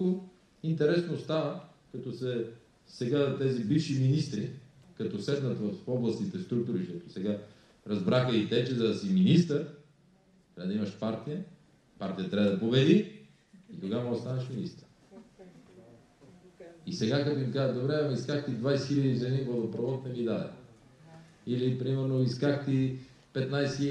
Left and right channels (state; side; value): identical; both; correlation 1.00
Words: интересно става, като сега тези бивши министри, като седнат в областните структури, защото сега разбраха и те, че за да си министър, трябва да имаш партия трябва да победи и тогава може да станеш министър. И сега като им казват, добре, исках ти 20 000 за един водопровод, не ми даде. Или, примерно, исках ти 15